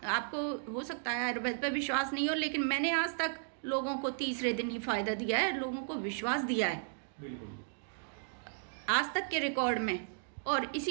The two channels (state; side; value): silent; left; digital silence